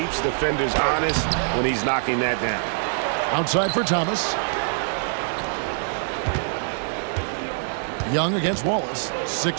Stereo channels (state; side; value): silent; left; digital silence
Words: defenders honest when he's knocking that down. Outside for Thomas. Young against Wallace.